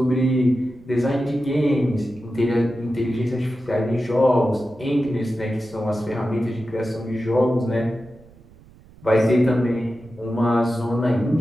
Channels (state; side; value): noise; right; rumble, 24 dB below the sound